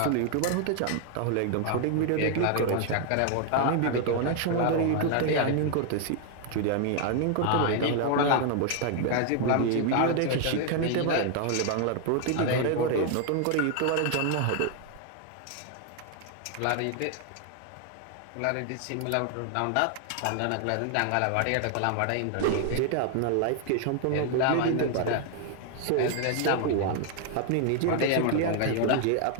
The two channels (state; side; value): different; both; correlation 0.00